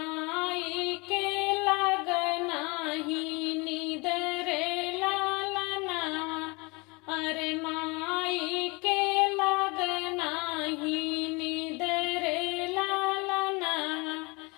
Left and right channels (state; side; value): quieter; right; 27.2 dB